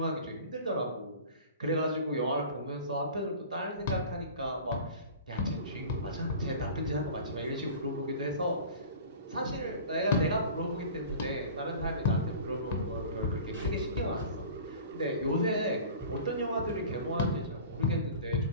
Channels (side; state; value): both; inverted; correlation -0.40